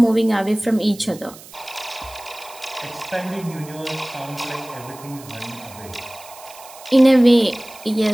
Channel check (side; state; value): right; noise; hiss, 19 dB below the sound